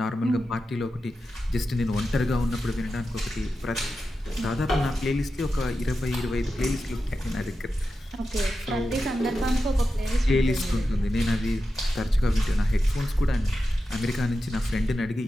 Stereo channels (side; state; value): both; normal; correlation 0.91